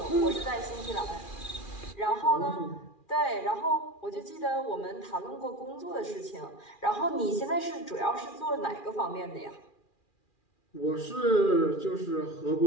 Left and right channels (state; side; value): late; right; 2.4 ms